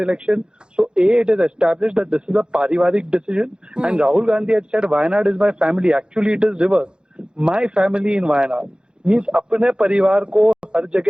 So it is established that this is a parivarik decision, and Rahul Gandhi had said Wayanad is my family. Actually it is reverse. My family in Wayanad means अपने परिवार को हर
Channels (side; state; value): left; late; 0.049 ms